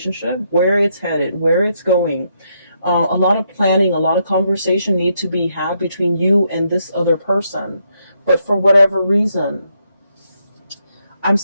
where it's headed, where it's going. A lot of planning, a lot of conversation need to be had between you and this other person. But for whatever reason, I'm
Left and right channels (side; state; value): both; inverted; correlation -0.77